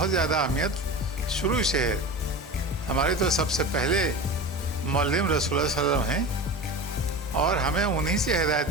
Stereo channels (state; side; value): normal; both; correlation 0.30